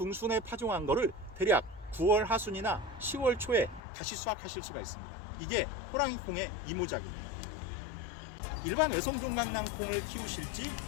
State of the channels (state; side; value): drops out; right; at 3.8 s